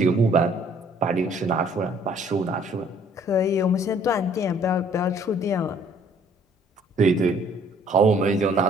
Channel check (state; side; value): normal; both; correlation 0.59